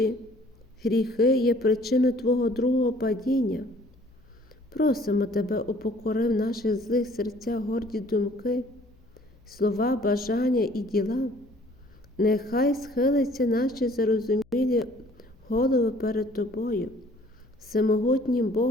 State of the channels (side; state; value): left; noise; hum, 29 dB below the sound